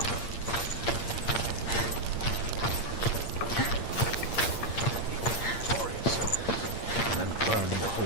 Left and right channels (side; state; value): right; late; 8.7 ms